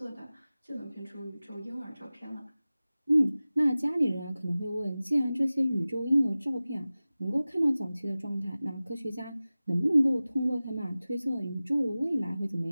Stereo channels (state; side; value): inverted; both; correlation -0.97